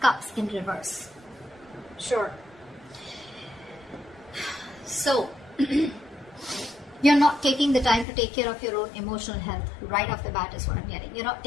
in reverse. Sure. So, you're not taking the time to take care of your own emotional health right off the bat is what I'm getting. You're not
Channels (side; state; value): right; drops out; at 8.1 s